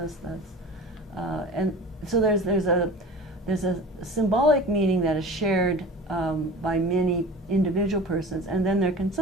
And so there's a symbolic meaning that is shared by many individual persons, and then there can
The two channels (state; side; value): normal; both; correlation 0.38